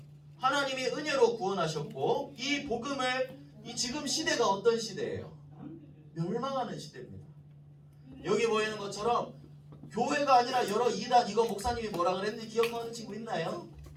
하나님이 은혜로 구원하셨고 이 복음을 지금 시대가 어떤 시대예요? 멸망하는 시대입니다. 여기 보이는 것처럼 교회가 아니라 여러 이단, 이거 목사님이 뭐라 그랬는지 기억하는 친구 있나요?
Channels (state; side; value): identical; both; correlation 1.00